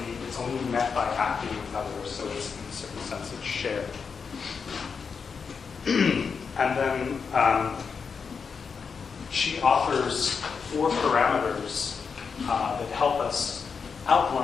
it's only met by acting with others, so it's, in a certain sense, it's shared. And then she offers 4 parameters that help us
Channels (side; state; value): right; quieter; 5.7 dB